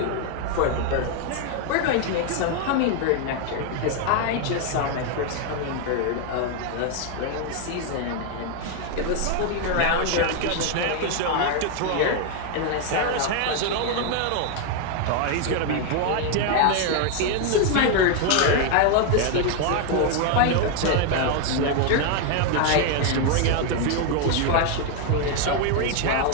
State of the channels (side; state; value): both; different; correlation 0.01